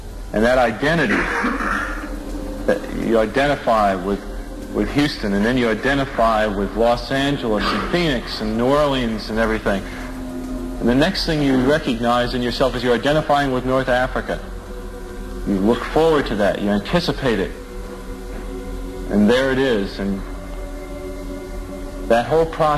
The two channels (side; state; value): both; identical; correlation 1.00